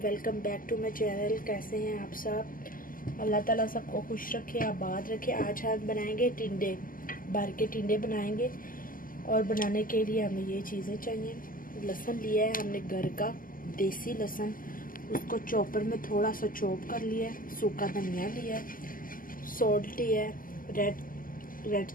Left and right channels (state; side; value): late; right; 0.41 ms